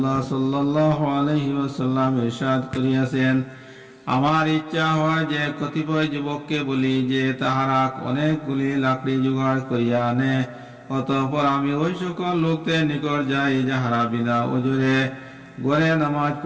সাল্লাল্লাহু আলাইহি ওয়াসাল্লাম ইরশাদ করিয়াছেন, আমার ইচ্ছা হয় যে কতিপয় যুবককে বলি যে তাহারা অনেকগুলি লাকড়ি জোগাড় করিয়া আনে, অতঃপর আমি ওই সকল লোকদের নিকট যাই যাহারা বিনা ওজরে ঘরে নামাজ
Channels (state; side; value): identical; both; correlation 1.00